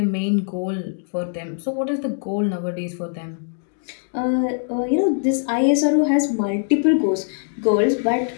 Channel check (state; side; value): silent; right; digital silence